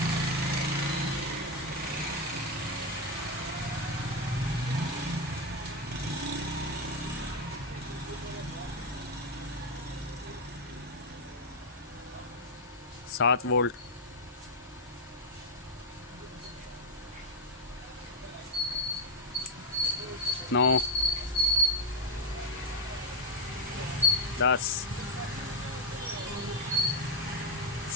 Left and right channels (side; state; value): both; normal; correlation 0.04